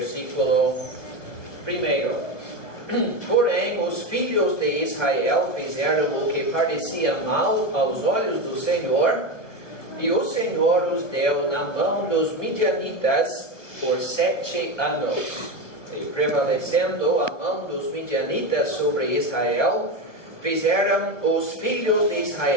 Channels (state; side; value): late; right; 1.1 ms